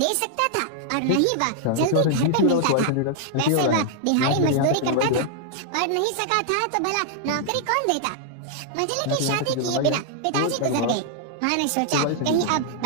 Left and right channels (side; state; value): both; different; correlation -0.01